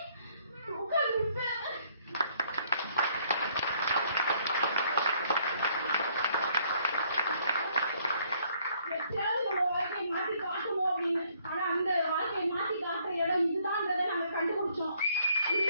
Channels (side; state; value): both; inverted; correlation -0.66